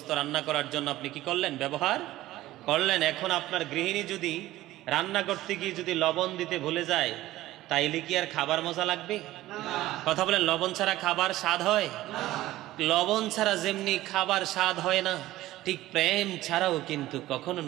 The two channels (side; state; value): left; quieter; 15.9 dB